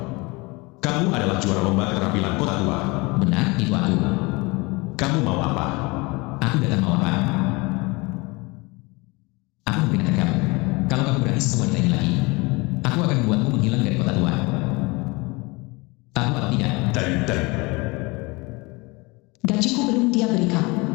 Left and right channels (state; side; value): quieter; right; 25.6 dB